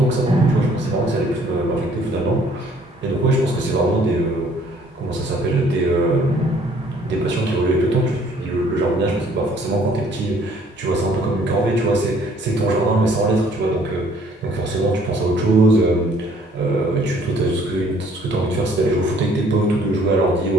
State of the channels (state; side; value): normal; both; correlation 0.60